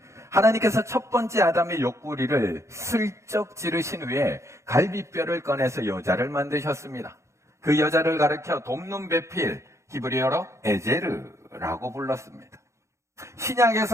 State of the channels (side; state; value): left; late; 0.14 ms